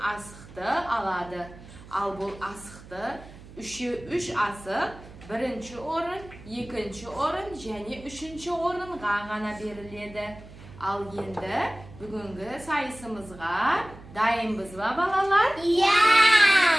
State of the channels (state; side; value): noise; right; hum, 18 dB below the sound